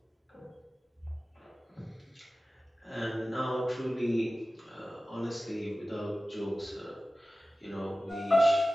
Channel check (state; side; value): normal; both; correlation 0.96